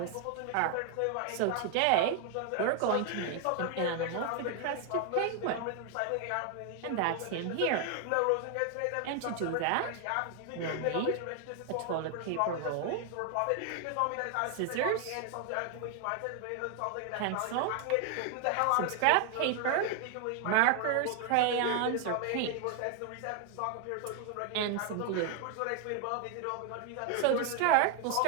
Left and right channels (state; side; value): different; both; correlation 0.01